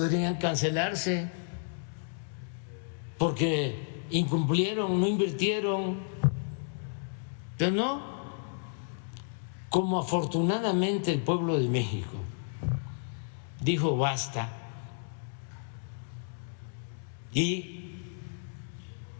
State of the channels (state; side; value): silent; right; digital silence